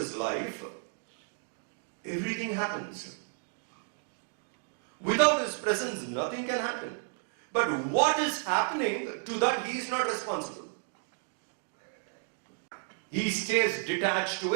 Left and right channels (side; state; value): left; silent; 56 dB below the other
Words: life, everything happens. Without His presence, nothing can happen. But what is happening, to that He is not responsible. He stays detached to